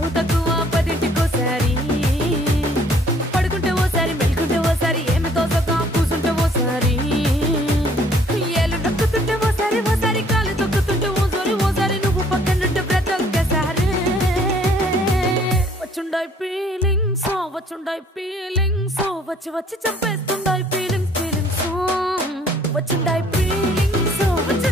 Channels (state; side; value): normal; both; correlation 0.59